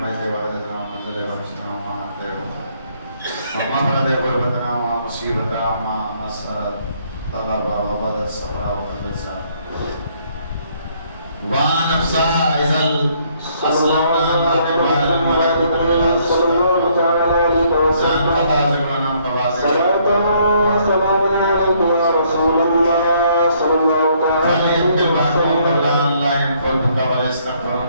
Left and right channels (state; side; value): inverted; both; correlation -0.67